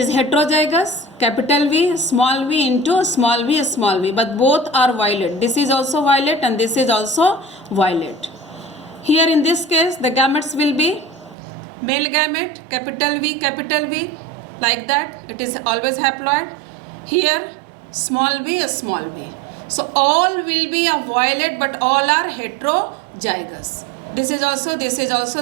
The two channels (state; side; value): drops out; left; at 11.4 s